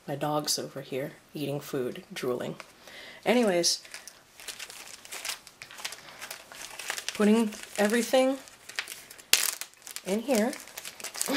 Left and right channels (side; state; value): both; identical; correlation 1.00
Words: My dog's over here eating food, drooling. Anyways, putting everything in here.